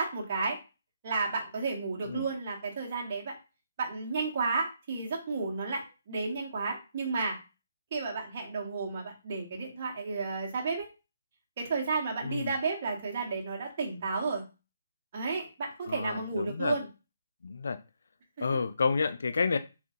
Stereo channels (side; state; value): both; inverted; correlation -0.76